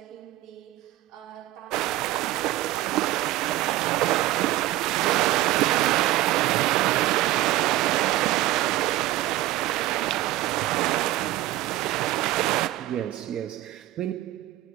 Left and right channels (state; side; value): quieter; left; 15.3 dB